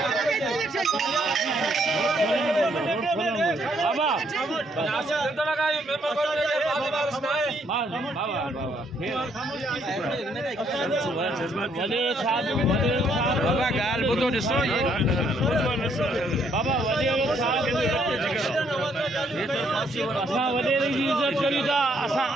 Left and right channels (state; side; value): normal; both; correlation 0.70